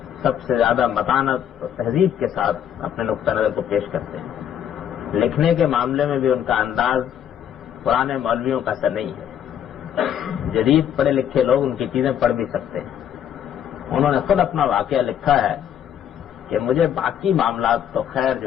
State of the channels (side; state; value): right; quieter; 9.6 dB